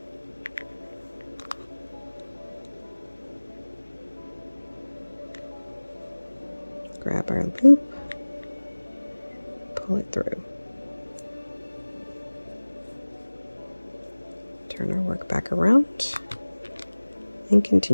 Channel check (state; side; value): inverted; both; correlation -1.00